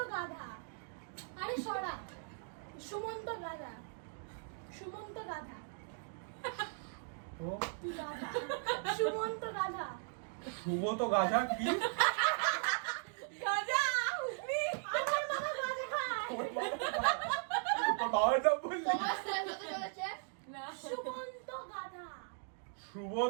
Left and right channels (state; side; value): silent; left; digital silence